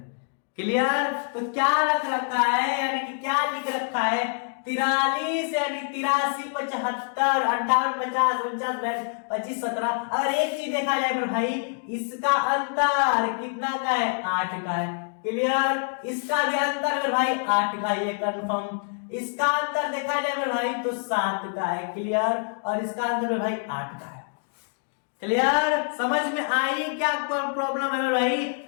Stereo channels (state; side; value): silent; right; 61 dB below the other